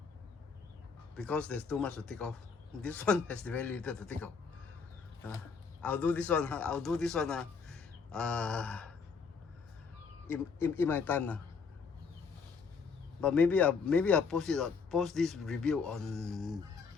because there's too much to take off. This one has very little to take off. I'll do this one. In my time. But maybe I'll post this review on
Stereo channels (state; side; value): quieter; right; 5.4 dB